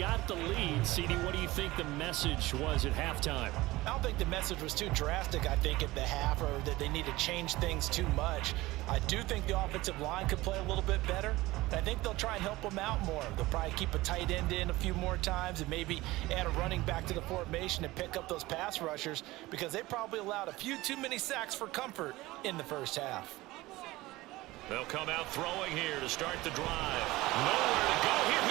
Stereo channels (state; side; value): quieter; left; 19.1 dB